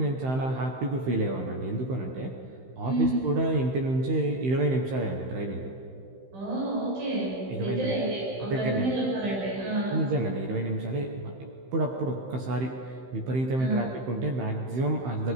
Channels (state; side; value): late; left; 15 ms